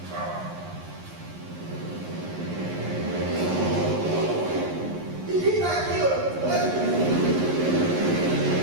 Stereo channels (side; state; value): left; late; 11 ms